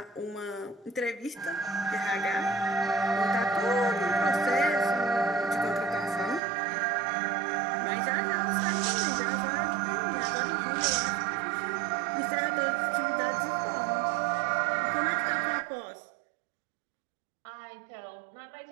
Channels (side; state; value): left; drops out; at 6.4 s